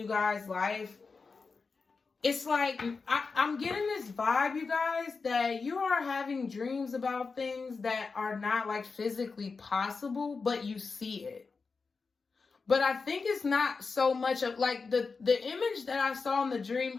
guys' life. It's like, I'm getting this vibe, you guys, that you are having dreams about things that are not like physically possible, but you see it. But I think it's not so much of like the image that I saw in the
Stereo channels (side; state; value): right; quieter; 4.6 dB